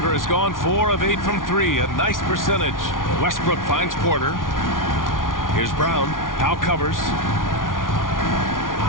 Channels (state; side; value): late; right; 0.89 ms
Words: has gone 4 of 8 from 3, a nice percentage. Westbrook finds Porter. Here's Brown. Powell covers.